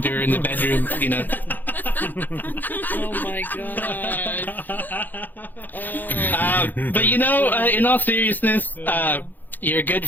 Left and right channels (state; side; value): late; right; 0.086 ms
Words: in the bedroom, Oh my God. But in all seriousness, you're a good